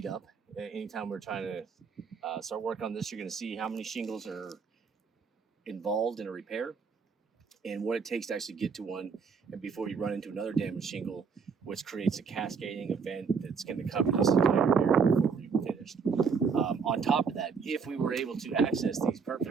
up. Anytime we're trying to start work on this, you're going to see how many shingles are involved in a repair and what it takes to actually get to one, and before you run into another damaged shingle, which creates a cascading event that's going to cover this entire area before we're even finished. On top of that, if we were able to access these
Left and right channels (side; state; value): left; quieter; 5.7 dB